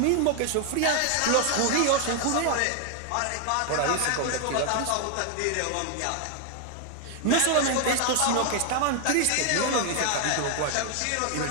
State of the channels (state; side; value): different; both; correlation 0.00